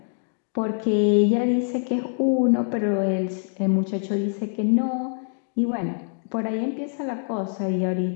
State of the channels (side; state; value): right; silent; 62 dB below the other